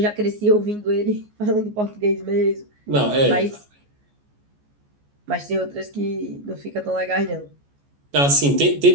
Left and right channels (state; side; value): late; left; 14 ms